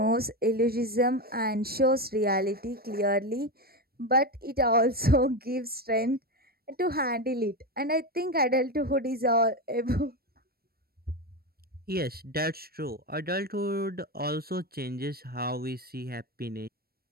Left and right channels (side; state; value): left; late; 0.44 ms